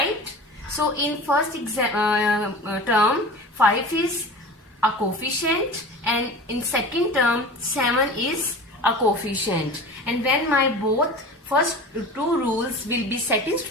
So in first term 5 is a coefficient, and in second term 7 is a coefficient. And when my both first two rules will be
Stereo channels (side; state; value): both; normal; correlation 0.36